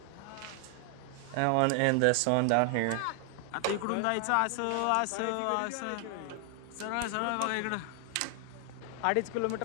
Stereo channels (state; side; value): different; both; correlation 0.00